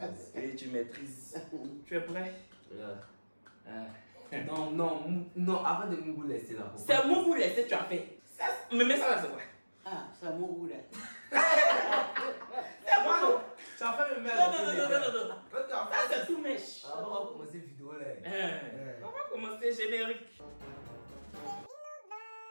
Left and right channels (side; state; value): both; inverted; correlation -1.00